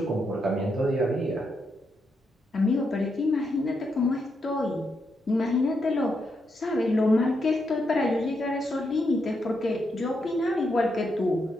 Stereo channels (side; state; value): both; normal; correlation 0.82